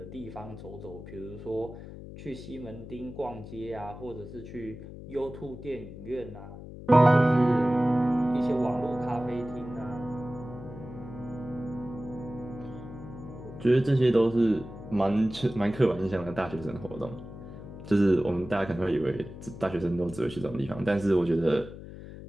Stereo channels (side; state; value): left; noise; hum, 13 dB below the sound